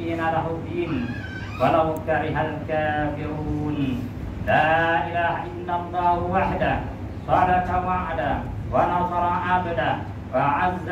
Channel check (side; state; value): both; identical; correlation 1.00